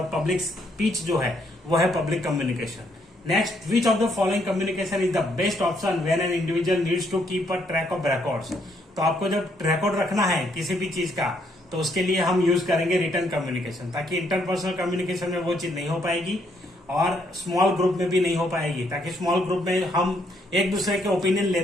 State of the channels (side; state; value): both; normal; correlation 0.72